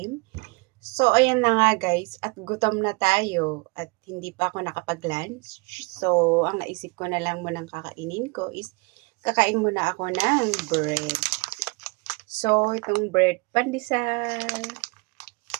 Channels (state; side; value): quieter; left; 30.3 dB